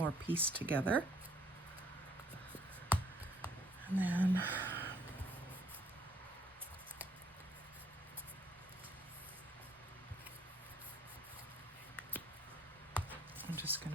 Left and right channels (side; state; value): both; normal; correlation 0.64